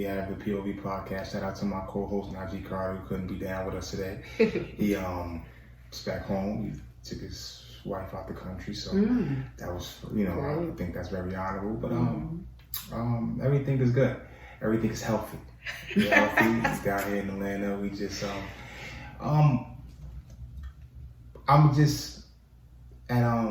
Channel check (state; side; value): identical; both; correlation 1.00